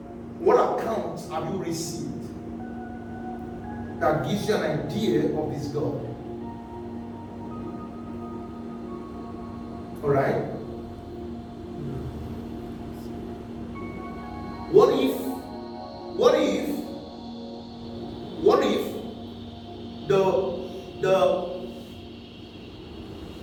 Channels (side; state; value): both; identical; correlation 1.00